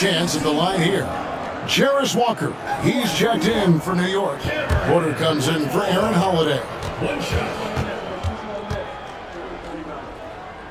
at the line here. Jarris Walker, he's checked in for New York. Porter comes in for Aaron Holiday. One shot.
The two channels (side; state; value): both; identical; correlation 1.00